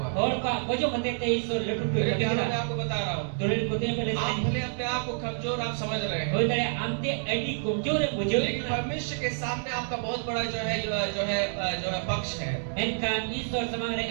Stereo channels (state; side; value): silent; left; 59 dB below the other